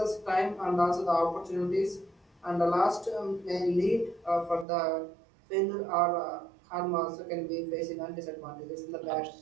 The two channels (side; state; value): left; drops out; at 4.7 s